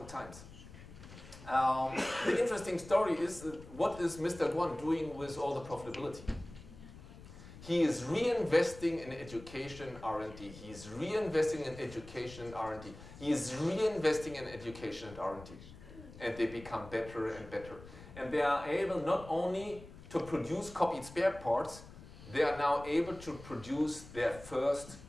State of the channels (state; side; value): noise; left; rumble, 17 dB below the sound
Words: times. The interesting story is what is Mr. Duan doing with all the profitability? He is reinvesting in education R&D. He is reinvesting in education and R&D. He is reinvesting in education and R&D. And they become better and better. And they are able not only to produce copied spare parts, they are now able to produce their first